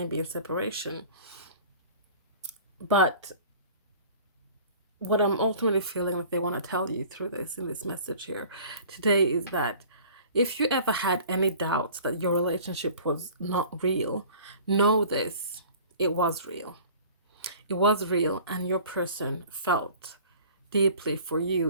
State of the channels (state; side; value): inverted; both; correlation -0.46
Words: be in separation. But what I'm ultimately feeling that they want to tell you through this, in this message here today, is that if you ever had any doubts that your relationship was not real, know this, it was real. It was real, and your person felt deeply for you,